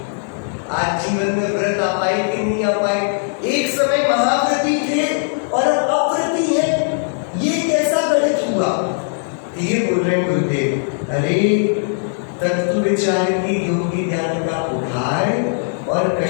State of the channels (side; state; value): right; silent; digital silence